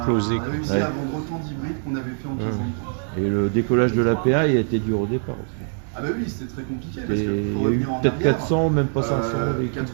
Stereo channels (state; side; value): silent; left; 60 dB below the other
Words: réussi à vendre autant d'hybrides qu'on avait fait en 15 ans de temps. Et le décollage de l'APA, il a été dur au départ aussi. Ah bah oui, c'était très compliqué. Parce que il y a eu peut-être 400, même pas 500.